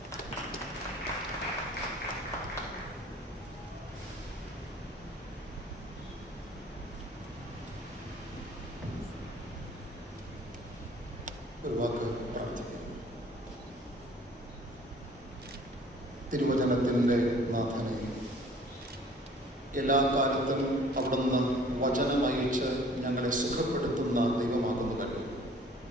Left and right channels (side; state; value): both; normal; correlation 0.52